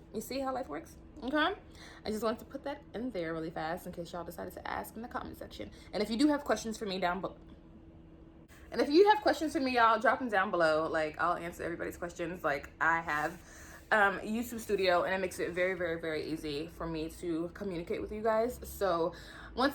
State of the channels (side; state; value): both; identical; correlation 1.00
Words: you see how life works? Okay, I just wanted to put that in there really fast in case y'all decided to ask in the comment section. And if you do have questions for me down below, y'all drop them down below. Like, I'll answer everybody's questions. Like, I have YouTube Studio, and it makes it very, very, very easy for me to communicate with you guys. So